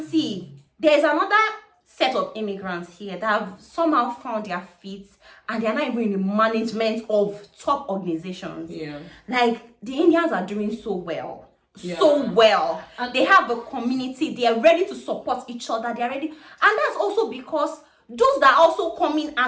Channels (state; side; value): identical; both; correlation 1.00